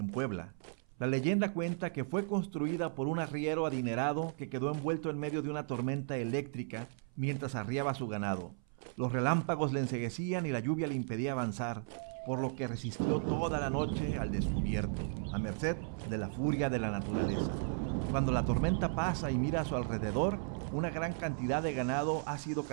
Puebla. La leyenda cuenta que fue construida por un arriero adinerado que quedó envuelto en medio de una tormenta eléctrica mientras arriaba su ganado. Los relámpagos le enceguecían y la lluvia le impedía avanzar, por lo que resistió toda la noche al descubierto, a merced de la furia de la naturaleza. Cuando la tormenta pasa y mira a su alrededor, una gran cantidad de ganado ha sido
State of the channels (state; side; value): silent; left; 54 dB below the other